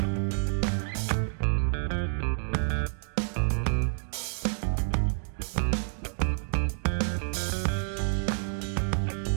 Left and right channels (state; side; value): silent; left; digital silence